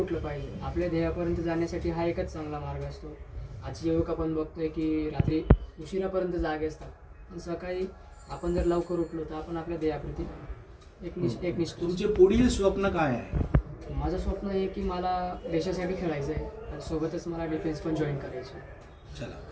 पाहिजे. आपल्या ध्येयापर्यंत जाण्यासाठी हा एकच चांगला मार्ग असतो. आजची युवक आपण बघतोय की रात्री उशिरापर्यंत जागे असतात, पण सकाळी आपण जर लवकर उठलो तर आपण आपल्या ध्येयाप्रती एक तुमचे पुढील स्वप्न काय आहे? माझं स्वप्न आहे की मला देशासाठी खेळायचं आहे आणि सोबतच मला डिफेन्स पण जॉईन करायचं. चला,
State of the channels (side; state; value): both; identical; correlation 1.00